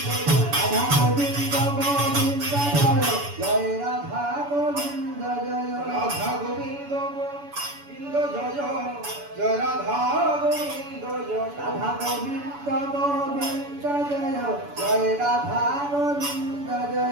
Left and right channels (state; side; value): late; left; 7.0 ms